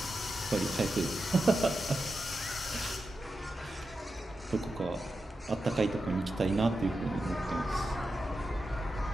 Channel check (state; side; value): normal; both; correlation 0.89